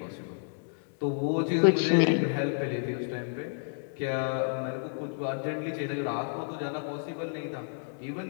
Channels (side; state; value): right; silent; digital silence